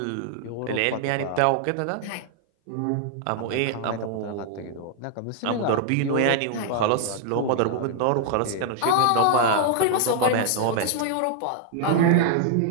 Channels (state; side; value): different; both; correlation 0.00